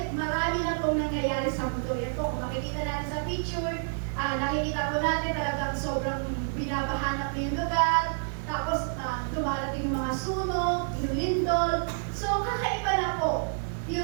marami na pong nangyayari sa mundo. Yan po, kung makikita natin sa picture, nakikita po natin talagang sobrang binabahanap na yung lugar. Tapos, dumarating yung mga sunog, yung lindol. So, kakaiba na po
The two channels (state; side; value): silent; left; 59 dB below the other